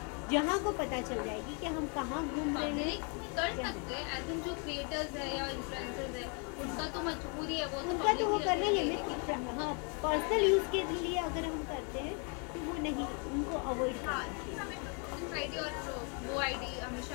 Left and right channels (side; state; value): right; quieter; 37.1 dB